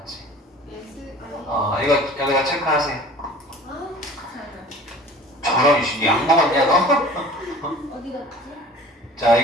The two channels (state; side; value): normal; both; correlation 0.45